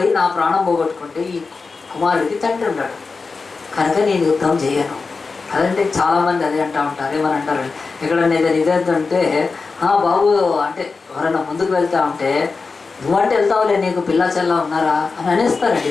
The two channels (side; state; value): right; quieter; 4.4 dB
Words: నా ప్రాణం పోగొట్టుకుంటే ఈ కుమారుడికి తండ్రి ఉన్నాడు కనుక నేను యుద్ధం చేయను. అదంటే చాలామంది అదే అంటూ ఉంటారు. ఏమని అంటారు, ఎక్కడన్నా ఏదైనా ఇదేంటంటే బాబు అంటే ఎవరైనా ముందుకు వెళ్తా ఉంటే నువ్వంటే వెళ్తావులే, నీకు పిల్ల చెల్ల ఉన్నారా అని అనేస్తారండి